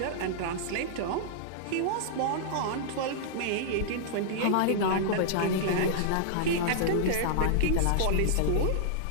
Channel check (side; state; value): both; different; correlation -0.01